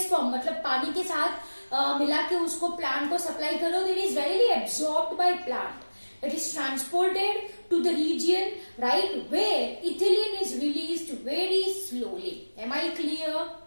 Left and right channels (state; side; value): inverted; both; correlation -1.00